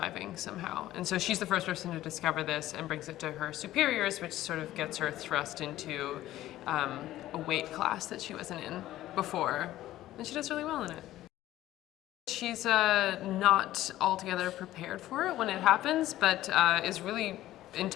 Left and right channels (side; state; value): right; quieter; 14.5 dB